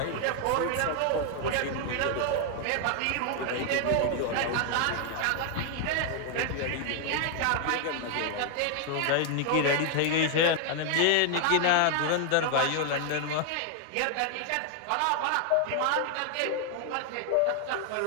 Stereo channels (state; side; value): different; both; correlation 0.00